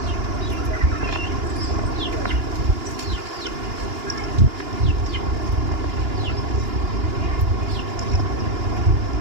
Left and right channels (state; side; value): late; left; 2.9 ms